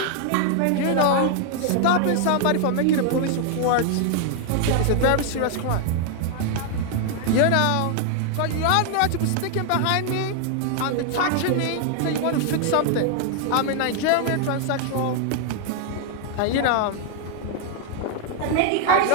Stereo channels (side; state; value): both; different; correlation 0.00